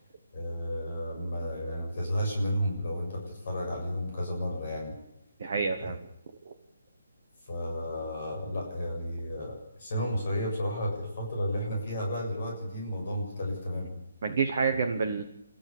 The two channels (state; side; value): inverted; both; correlation -0.76